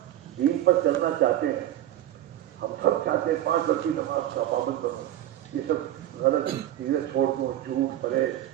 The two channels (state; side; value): quieter; left; 12.9 dB